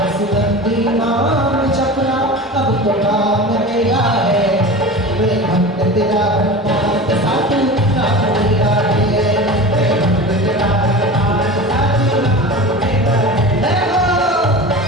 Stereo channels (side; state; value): both; normal; correlation 0.32